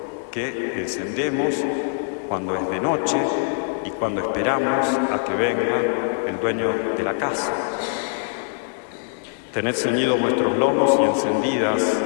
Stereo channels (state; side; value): silent; right; 63 dB below the other